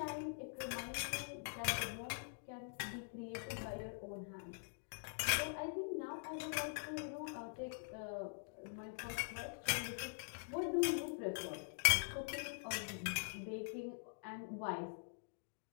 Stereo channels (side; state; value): right; silent; digital silence